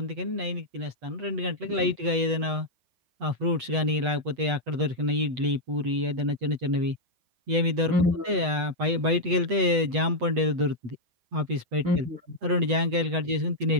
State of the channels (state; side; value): late; left; 8.1 ms